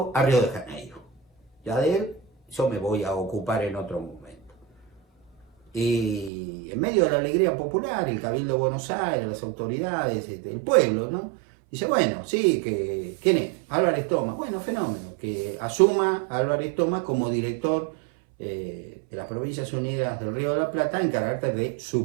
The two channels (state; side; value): drops out; left; at 6.3 s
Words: a Río de Janeiro. Ya de él, yo me voy a ocupar en otro momento. Y en medio de la alegría popular, el Cabildo de Buenos Aires, las autoridades, el pueblo, ¿no? Dice, bueno, sí, ¿quién es? Álvarez Thomas. Bueno, fenómeno, que asuma a Álvarez Thomas como director de las Provincias Unidas del Río de la Plata en carácter de